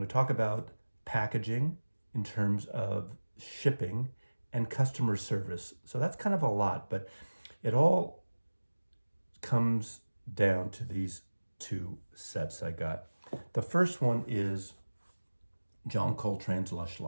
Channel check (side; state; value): both; inverted; correlation -1.00